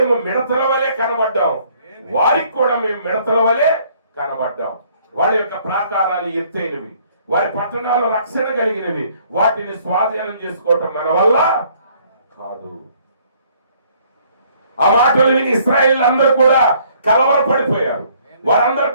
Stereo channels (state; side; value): inverted; both; correlation -0.62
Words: మిడతల వలె కనబడ్డాం, వారికి కూడా మేము మిడతల వలె కనబడ్డాం. వాళ్ళ యొక్క ప్రాకారాలు ఎత్తైనవి, వారి పట్టణాలు రక్షణ కలిగినవి. వాటిని స్వాధీనం చేసుకోవటం మన వల్ల కాదు. ఆ మాటలు విని ఇశ్రాయేలు అందరూ కూడా కలవరపడిపోయారు. వారందరూ